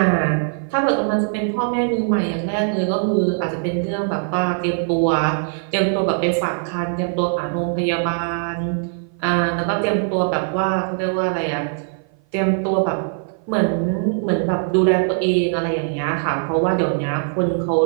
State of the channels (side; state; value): left; silent; 56 dB below the other